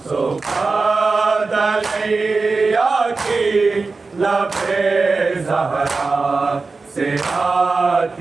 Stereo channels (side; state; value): left; quieter; 4.0 dB